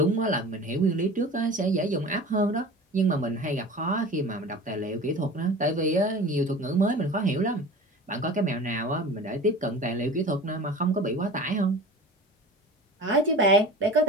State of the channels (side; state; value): both; normal; correlation 0.37